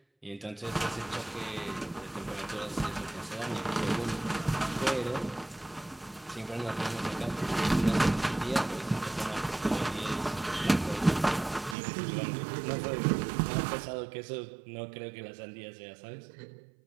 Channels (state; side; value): drops out; left; at 11.8 s